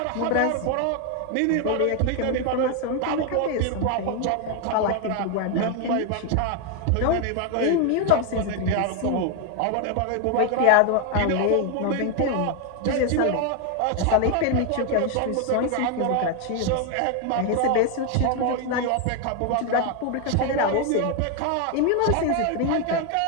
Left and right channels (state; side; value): different; both; correlation 0.00